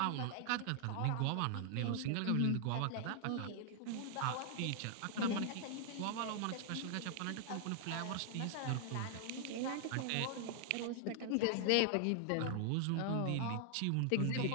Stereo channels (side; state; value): both; different; correlation 0.00